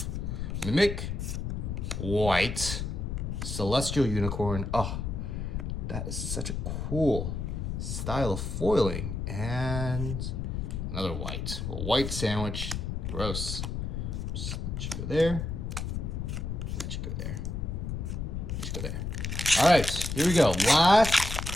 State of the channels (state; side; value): noise; left; rumble, 3 dB below the sound